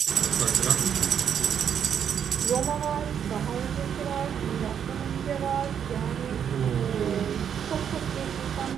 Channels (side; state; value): left; quieter; 8.3 dB